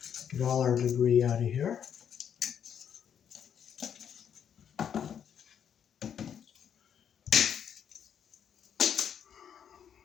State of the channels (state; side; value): quieter; right; 8.5 dB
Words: Get all our debris out of here.